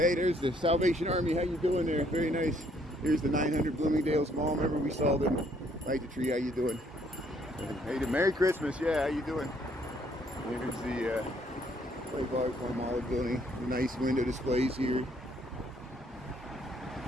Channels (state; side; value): normal; both; correlation 0.66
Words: there's the Salvation Army. How you doing there? Very nice. Here's the 900 Bloomingdale's Mall. Remember we saw them. Light the tree. How you doing? Hey, Merry Christmas. Yeah, how you doing? Here's the Farm Olive building. The nice window displays here.